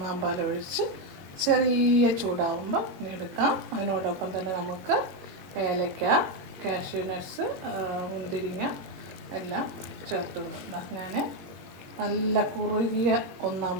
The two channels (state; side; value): late; left; 22 ms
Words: പാൽ ഒഴിച്ച് ചെറിയ ചൂടാവുമ്പോൾ എടുക്കാം. അതിനോടൊപ്പം തന്നെ നമുക്ക് ഏലക്ക, കാഷ്യൂ നട്ട്സ്, മുന്തിരിങ്ങ എല്ലാം ചേർത്ത് കൊടുക്കാം. ഞാൻ നല്ല കുറുകിയ ഒന്നാം